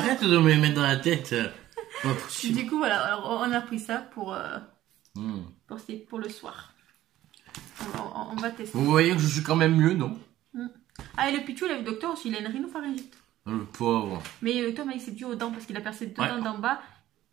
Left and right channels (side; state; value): left; quieter; 14.2 dB